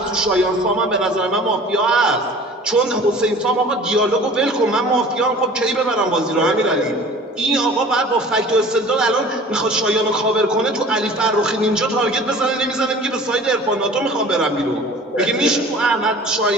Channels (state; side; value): normal; both; correlation 0.45